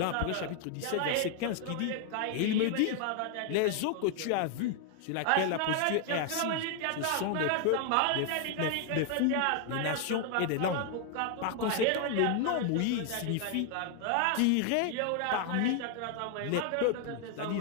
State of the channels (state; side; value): different; both; correlation 0.00